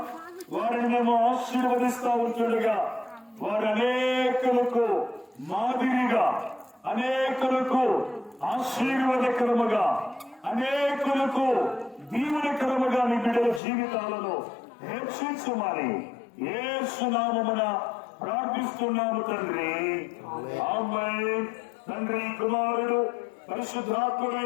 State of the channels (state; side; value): drops out; right; at 13.6 s